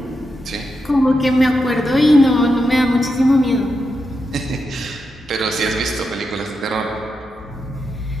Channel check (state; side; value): normal; both; correlation 0.86